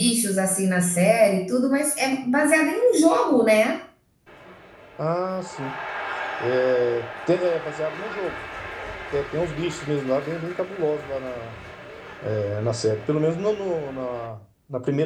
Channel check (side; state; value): both; identical; correlation 1.00